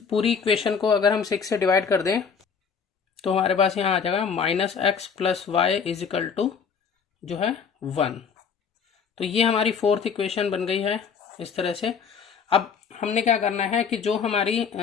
पूरी इक्वेशन को अगर हम 6 से डिवाइड कर दें तो हमारे पास यहाँ आ जाएगा minus X plus Y is equal to जो है 1। तो ये हमारी फोर्थ इक्वेशन बन गई है इस तरह से। अब हमने क्या करना है कि जो हमारी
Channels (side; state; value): right; quieter; 6.3 dB